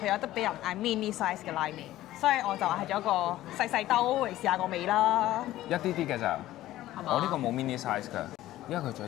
有得俾人嗌 mini size 嘅拉麵，所以我就係咗一個細細兜嚟試下個味啦。一啲啲嘅咋，係嘛？我呢個冇 mini size 㗎，因為佢仲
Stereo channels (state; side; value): quieter; right; 14.9 dB